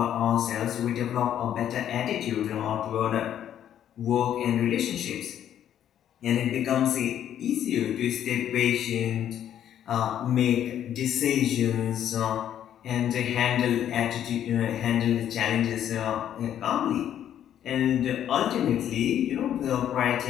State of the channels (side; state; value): right; quieter; 10.4 dB